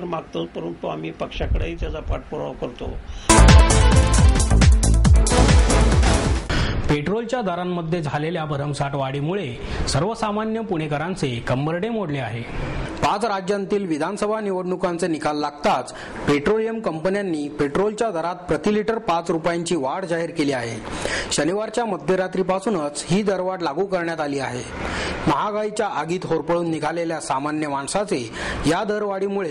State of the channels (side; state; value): both; identical; correlation 1.00